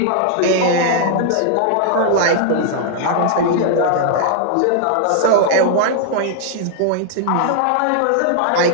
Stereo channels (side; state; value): both; different; correlation -0.01